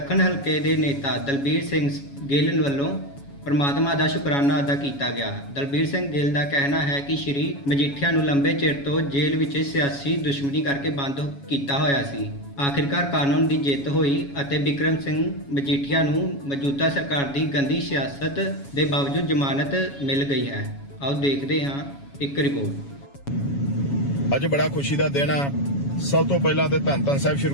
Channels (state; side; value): late; right; 7.2 ms